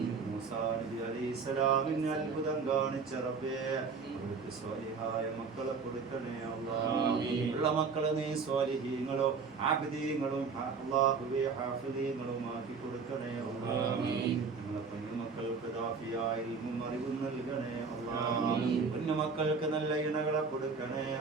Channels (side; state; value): left; quieter; 5.1 dB